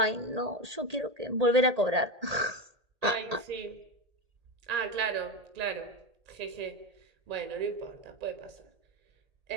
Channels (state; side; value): late; left; 1.8 ms